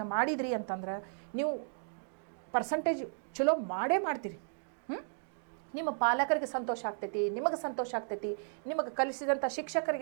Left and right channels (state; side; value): silent; left; digital silence